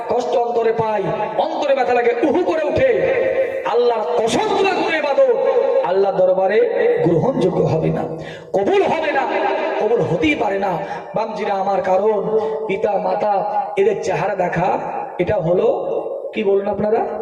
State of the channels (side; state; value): both; identical; correlation 1.00